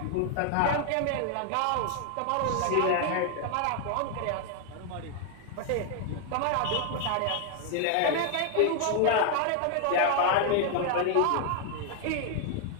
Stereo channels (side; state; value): both; different; correlation 0.00